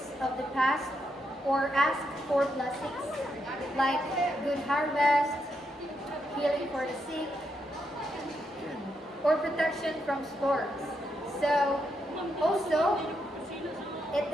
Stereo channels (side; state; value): both; normal; correlation 0.81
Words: of the past or asks for blessings like good harvest, healing for the sick, or protection from storms. So also it